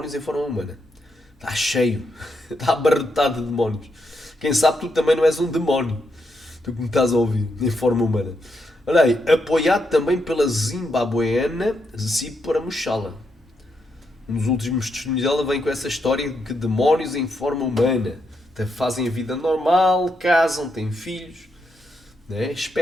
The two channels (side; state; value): both; normal; correlation 0.81